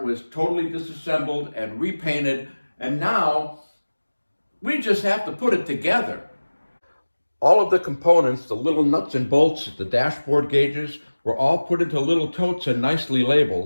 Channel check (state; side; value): inverted; both; correlation -1.00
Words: was totally disassembled and repainted, and now we just have to put it together. All of the components, the little nuts and bolts, the dashboard gauges, were all put into little totes and nicely